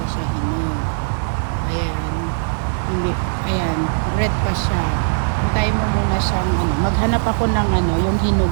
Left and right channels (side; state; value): left; silent; 66 dB below the other